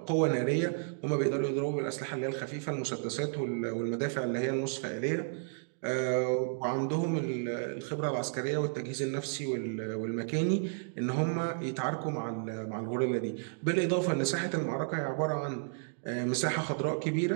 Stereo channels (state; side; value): silent; left; digital silence